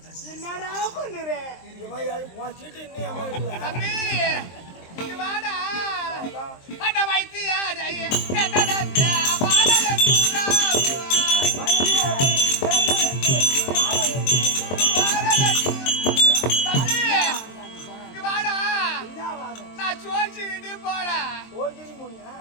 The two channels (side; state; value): right; late; 23 ms